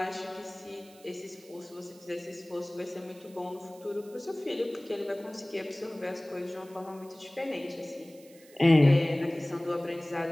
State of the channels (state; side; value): noise; right; hiss, 24 dB below the sound